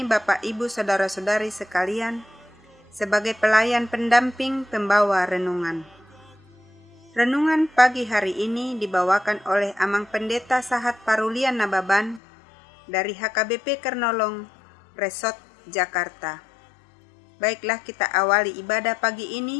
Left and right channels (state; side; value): drops out; right; at 12.2 s